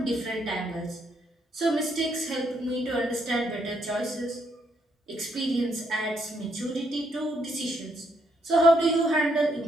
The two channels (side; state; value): both; normal; correlation 0.74